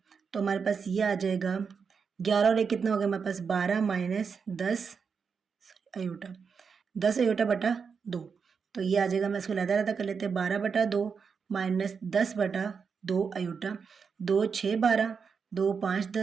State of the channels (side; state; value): left; quieter; 5.9 dB